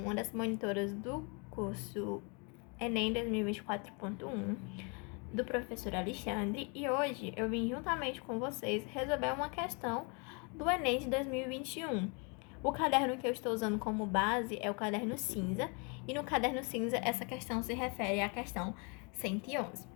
das monitoras do curso Enem 2024.1 do professor Alexandre, e hoje eu vim juntamente com vocês resolver uma questão do Enem de 2021. O caderno que eu estou usando como base é o caderno cinza, e no caderno cinza essa questão se refere à questão 111.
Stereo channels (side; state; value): right; quieter; 33.8 dB